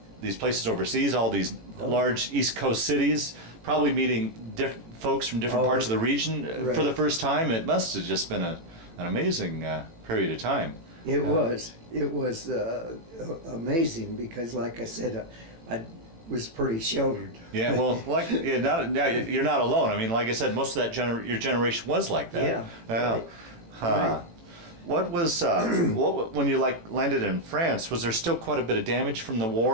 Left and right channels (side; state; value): left; late; 18 ms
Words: these places overseas, all these large East Coast cities, probably meeting different folks from different parts of the region for the first time. It must have just been an amazing period of time. It was amazing because, like I said, I was pretty sheltered. Yeah, well, like you're not alone. I mean, like I said, most of that your generation was like that. Yeah. Right. Right. What was when you landed in France? Was there still quite a bit of damage from the